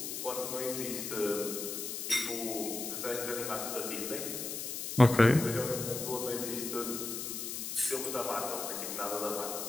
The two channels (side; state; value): left; noise; hiss, 5 dB below the sound